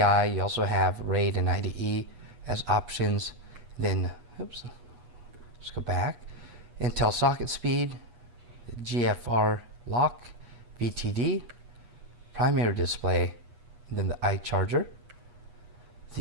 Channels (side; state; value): left; late; 8.3 ms